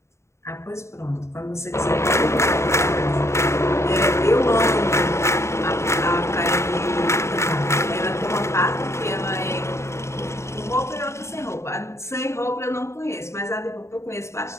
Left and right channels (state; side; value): late; right; 0.13 ms